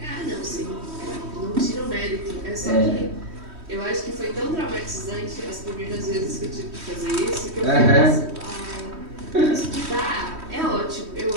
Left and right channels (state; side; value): late; left; 3.1 ms